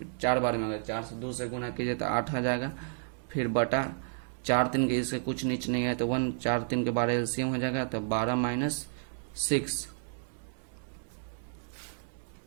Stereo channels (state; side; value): silent; left; digital silence